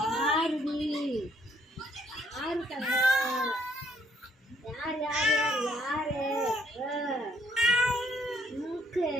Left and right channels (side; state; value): both; normal; correlation 0.67